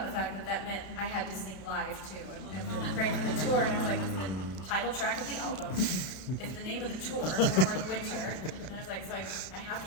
the fact that that meant I had to sing live too, and then right for the tour, and I was like, the title track of the album is the name of the tour, Warmer in the Winter, and I was like, so I have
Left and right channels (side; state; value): right; late; 32 ms